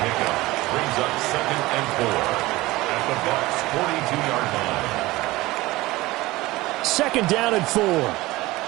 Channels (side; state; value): left; quieter; 19.4 dB